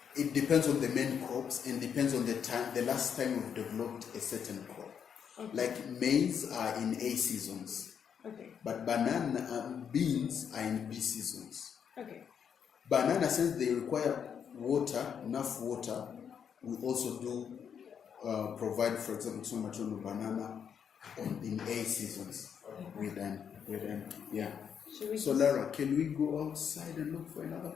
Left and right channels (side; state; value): right; quieter; 7.7 dB